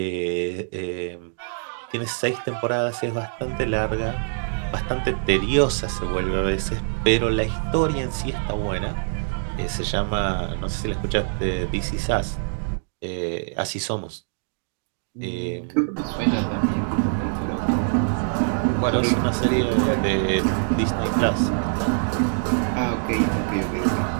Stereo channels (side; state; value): left; silent; digital silence